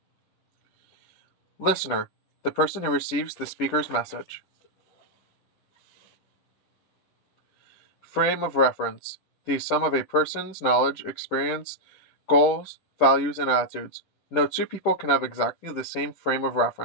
Listener. The person who receives the speaker's message. Frame of reference. The sum of a person's knowledge, experience, goals, values, and attitudes. No two people can have exactly the same frame of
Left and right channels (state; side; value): late; right; 10 ms